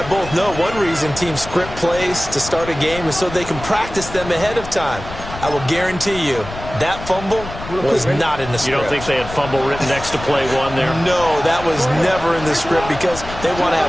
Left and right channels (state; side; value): noise; left; rumble, 12 dB below the sound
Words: both know, one reason teams script plays to start a game is so they can practice them ahead of time. I will guarantee you that fumble was not in the script. You don't think they had fumble written next to play one there? No, that was never in the script because they want to